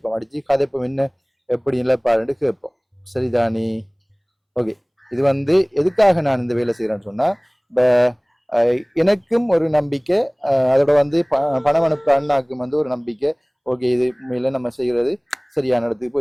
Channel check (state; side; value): identical; both; correlation 1.00